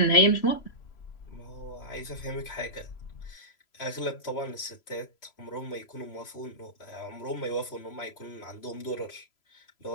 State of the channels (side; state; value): right; late; 3.0 ms